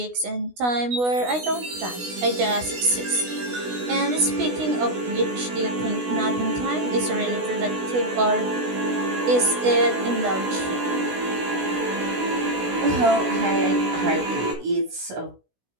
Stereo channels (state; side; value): late; left; 16 ms